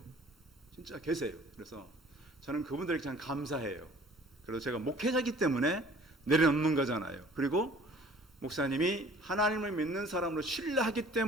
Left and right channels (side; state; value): both; normal; correlation 0.51